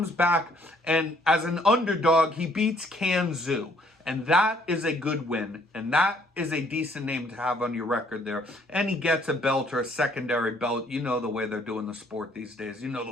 back, and as an underdog, he beats Kanzu. And that is a good win. And that is a decent name to have on your record there. And he gets a belt or a secondary belt. You know the way they're doing the sport these days. You know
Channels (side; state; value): both; normal; correlation 0.63